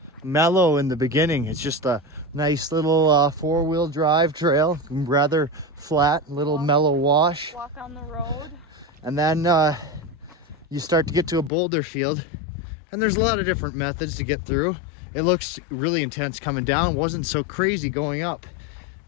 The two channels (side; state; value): right; drops out; at 11.5 s